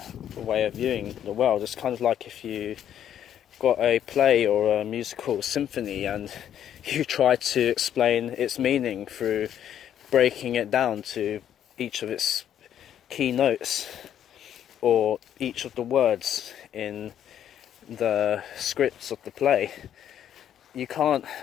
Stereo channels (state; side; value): quieter; right; 10.1 dB